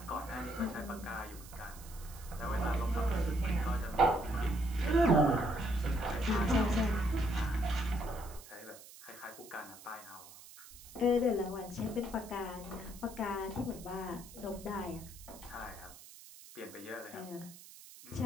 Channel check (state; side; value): noise; right; hiss, 18 dB below the sound